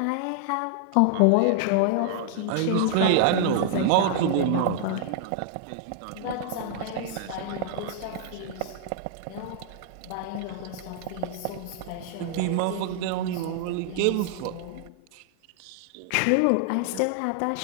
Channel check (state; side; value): different; both; correlation 0.00